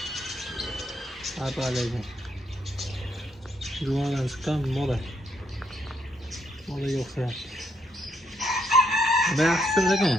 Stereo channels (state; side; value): normal; both; correlation 0.74